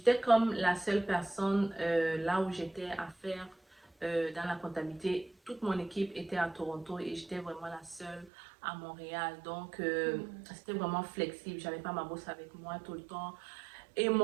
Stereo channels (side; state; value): left; drops out; at 8.3 s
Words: comme la seule personne là où j'étais à faire dans la comptabilité. Toute mon équipe était à Toronto et j'étais vraiment la seule à Montréal. Donc, c'était vraiment flexible. J'avais pas ma bosse avec moi tout le temps. Et